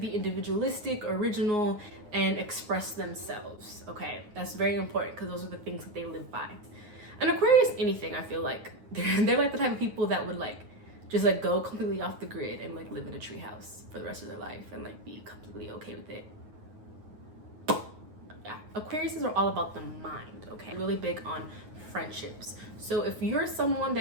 individualistic, original, and express themselves. Okay, that's very important because those are the things that they live by. And Aquarius, anything, I feel like they're like the type of people that would just go completely off the grid and live in a treehouse for the rest of their life and be completely okay with it. Yeah, Aquariuses are all about the mind, okay? Really big on friendships. So if you're someone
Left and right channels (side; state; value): left; late; 9.5 ms